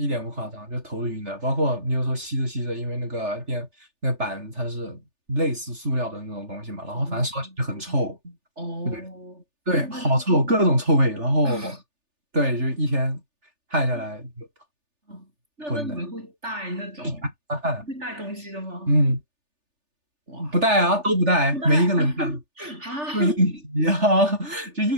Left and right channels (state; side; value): late; left; 3.4 ms